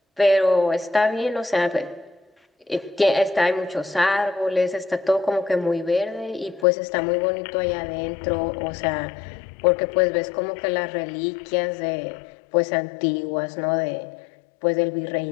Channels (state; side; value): drops out; right; at 6.7 s